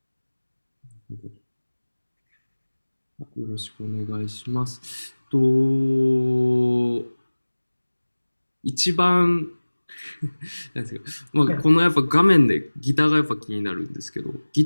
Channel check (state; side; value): inverted; both; correlation -1.00